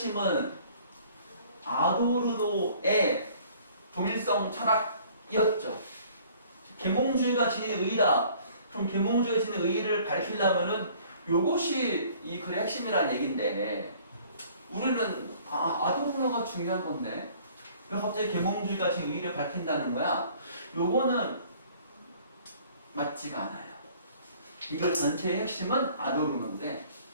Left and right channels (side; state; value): both; inverted; correlation -0.54